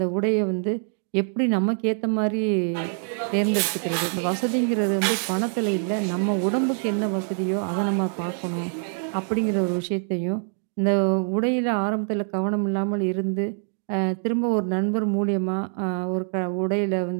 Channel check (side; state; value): left; silent; 62 dB below the other